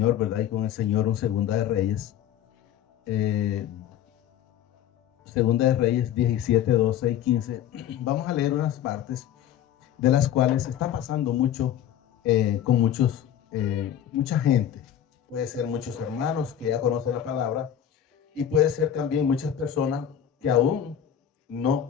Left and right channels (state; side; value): quieter; right; 10.1 dB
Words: ¿verdad? Y con el Señor un Segunda de Reyes. Segunda de Reyes 17, 12 y 15. Vamos a leer unas partes de las cuales está pasando mucho con mucha gente. Puede ser muchos hermanos que ya conocen la palabra y puede ser también muchas personas que aún no